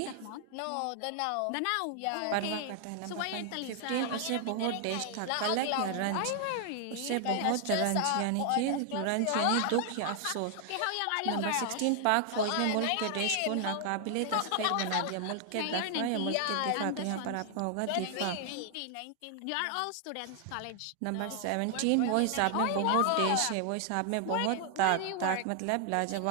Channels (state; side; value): different; both; correlation 0.00